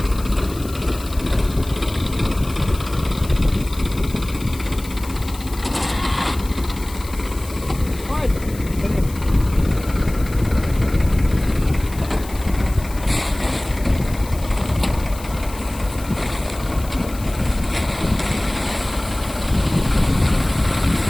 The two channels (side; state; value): left; noise; hiss, 16 dB below the sound